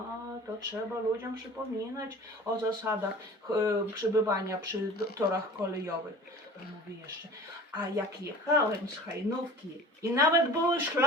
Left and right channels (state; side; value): normal; both; correlation 0.41